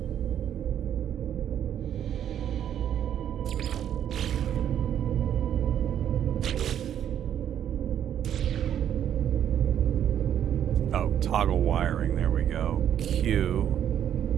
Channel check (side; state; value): left; quieter; 9.9 dB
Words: Toggle wiring, there we go. Q.